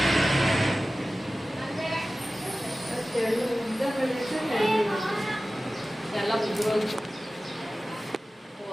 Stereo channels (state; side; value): normal; both; correlation 0.96